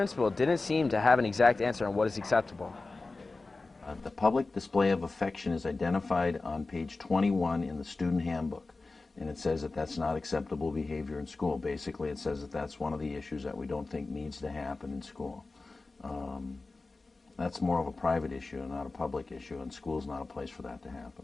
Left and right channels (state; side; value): quieter; right; 3.5 dB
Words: didn't seem to have an exact answer on what is acceptable. The public display of affection is identified on page 21 in the student handbook, and it says that that's not acceptable behavior in school. Basically, it says that that's one of the issues that we don't think needs to happen in school. That's more of a private issue and not a public issue, and school's not a place for that to happen.